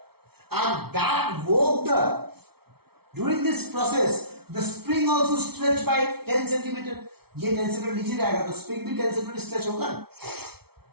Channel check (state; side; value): late; left; 0.95 ms